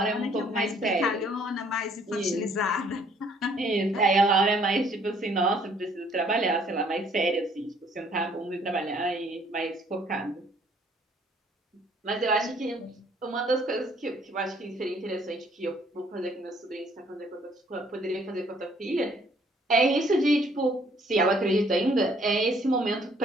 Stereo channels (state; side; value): normal; both; correlation 0.62